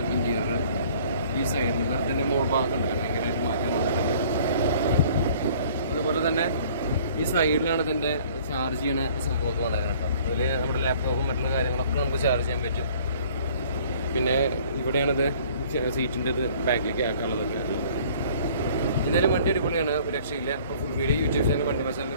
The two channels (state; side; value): inverted; both; correlation -0.54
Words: ഇന്റീരിയർ. ഈ സൈഡിൽ അതിൻ്റെ മോൾ ഭാഗം ഉണ്ട്, ഭയങ്കരമായിട്ട് മാറ്റം വന്നിട്ടുണ്ട്. അതുപോലെ തന്നെ ഈ സൈഡിലാണ് ഇതിൻ്റെ ചാർജ് ചെയ്യണ സംഭവമൊക്കെ വന്നേക്കുന്നത് കേട്ടോ. അതിൽ നമ്മുടെ ലാപ്ടോപ്പും മറ്റുള്ള കാര്യങ്ങളൊക്കെ നമുക്ക് ചാർജ് ചെയ്യാൻ പറ്റും. പിന്നെ ഇവിടെയാണിത് സീറ്റിൻ്റെ ഇത് ബാക്കിലേക്ക് ആക്കാനുള്ളതൊക്കെ. എന്തായാലും വണ്ടി അടിപൊളിയാണ്, ഒരു രക്ഷയില്ല. അപ്പോൾ ഫുൾ വീഡിയോ യൂട്യൂബ് ചാനൽ വണ്ടി മസാലിൽ